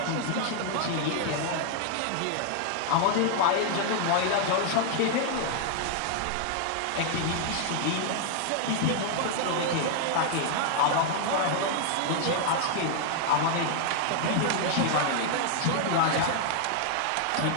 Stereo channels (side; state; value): both; different; correlation 0.00